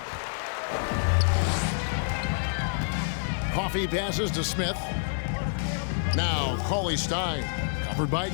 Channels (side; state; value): right; silent; digital silence